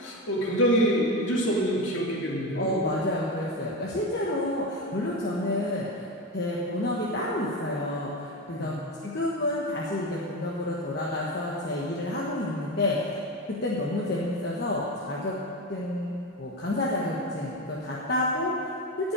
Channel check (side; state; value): both; normal; correlation 0.20